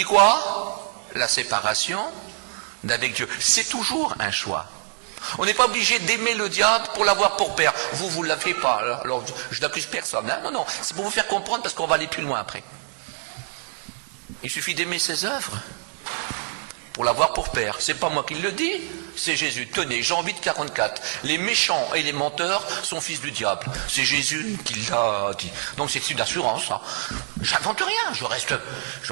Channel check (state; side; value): silent; left; digital silence